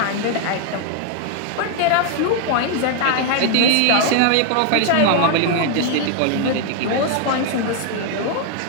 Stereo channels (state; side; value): different; both; correlation 0.00